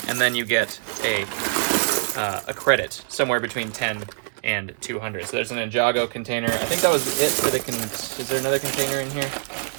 and then you get a credit somewhere between 10 and 200. So there's an Ninjago container. I think that was it for the is there another container in here?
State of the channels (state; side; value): silent; left; digital silence